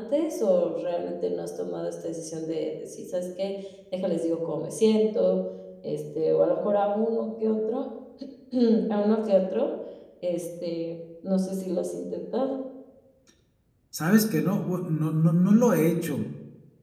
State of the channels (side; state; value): both; identical; correlation 1.00